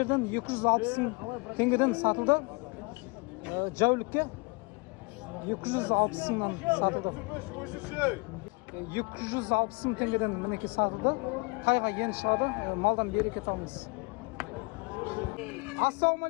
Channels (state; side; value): quieter; right; 29.8 dB